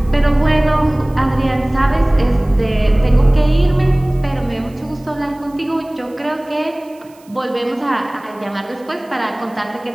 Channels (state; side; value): noise; right; hiss, 29 dB below the sound